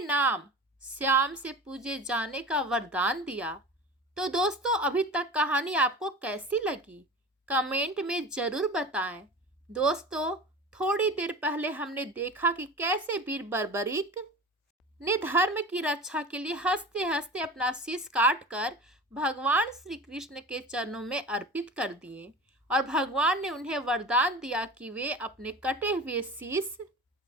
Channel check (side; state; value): both; normal; correlation 0.34